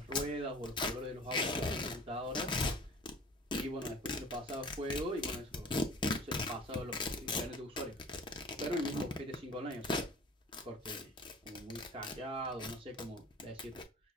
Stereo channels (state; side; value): normal; both; correlation 0.44